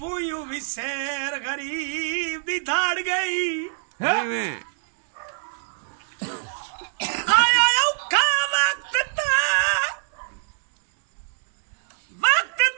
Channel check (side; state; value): left; silent; 62 dB below the other